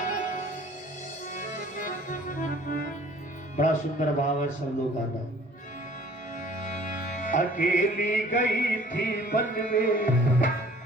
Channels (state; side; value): normal; both; correlation 0.52